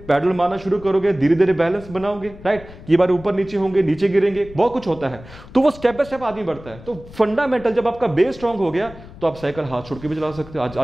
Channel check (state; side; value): noise; left; rumble, 18 dB below the sound